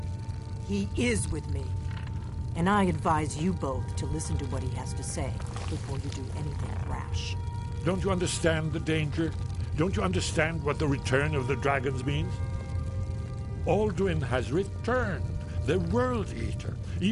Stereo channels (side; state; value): both; identical; correlation 1.00